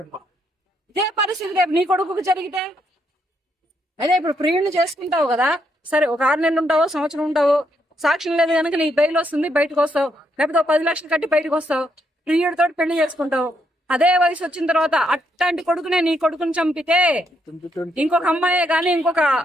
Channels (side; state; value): both; normal; correlation 0.76